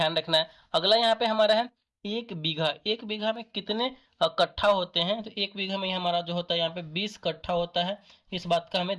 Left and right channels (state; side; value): identical; both; correlation 1.00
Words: रखना है। अगला यहाँ पे हमारा है एक बीघा। एक बीघा में कितने कट्ठा होते हैं? तो एक बीघा में हमारा जो होता है यहाँ पे 20 कट्ठा होता है। इस बात का हमें